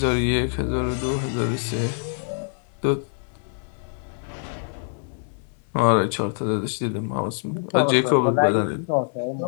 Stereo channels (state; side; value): silent; right; 62 dB below the other